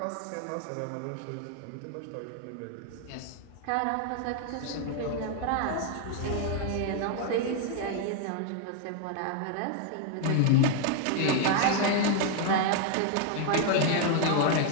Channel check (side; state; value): both; different; correlation 0.01